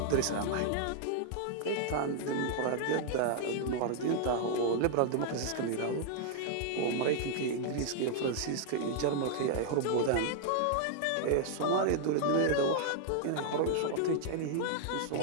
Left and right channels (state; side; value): different; both; correlation 0.00